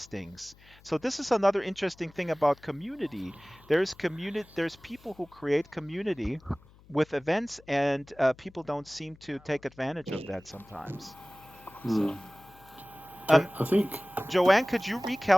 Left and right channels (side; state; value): left; noise; hum, 25 dB below the sound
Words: So this is another interesting thing about community. There's people who create community with events, and people don't seem to take advantage of that sometimes. So. I think. Joanne, could you